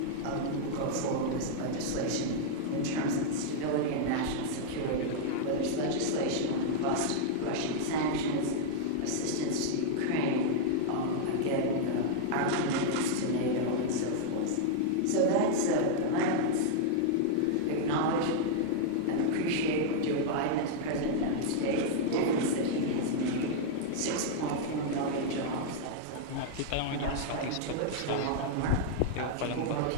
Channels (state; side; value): different; both; correlation -0.01